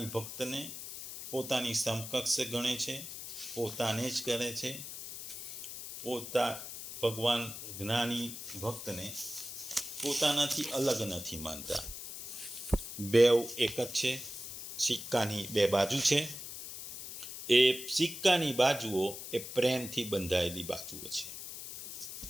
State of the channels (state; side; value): noise; left; hiss, 9 dB below the sound